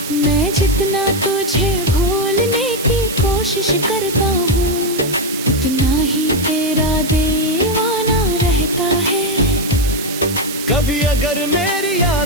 मैं जितना तुझे भूलने की कोशिश करता हूँ, उतना ही तेरा दीवाना रहता है। कभी अगर मेरी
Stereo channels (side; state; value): right; noise; hiss, 9 dB below the sound